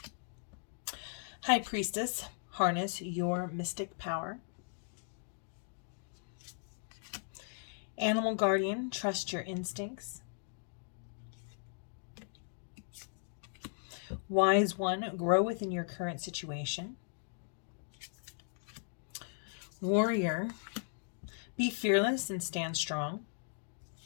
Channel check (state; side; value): silent; right; digital silence